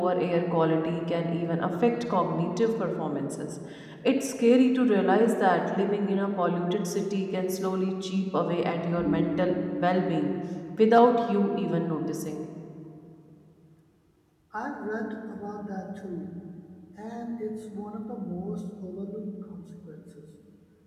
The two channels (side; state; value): both; identical; correlation 1.00